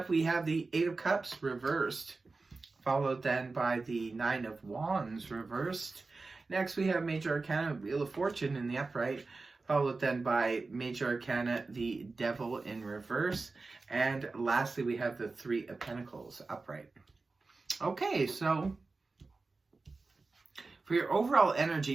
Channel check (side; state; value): left; quieter; 3.8 dB